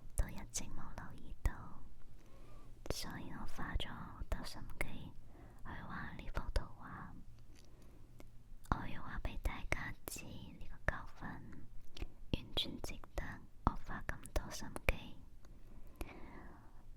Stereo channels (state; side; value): identical; both; correlation 1.00